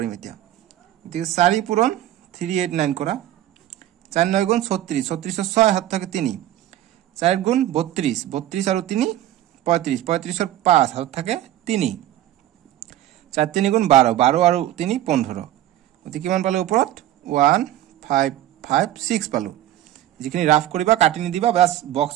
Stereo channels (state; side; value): quieter; left; 13.2 dB